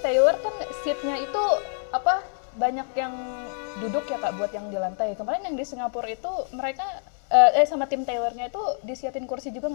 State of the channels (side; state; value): right; silent; 61 dB below the other